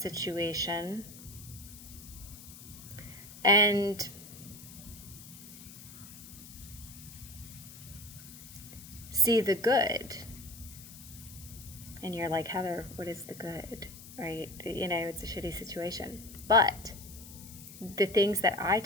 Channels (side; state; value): left; noise; hiss, 16 dB below the sound